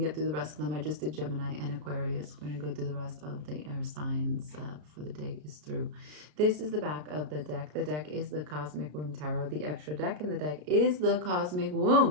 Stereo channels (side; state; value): left; late; 33 ms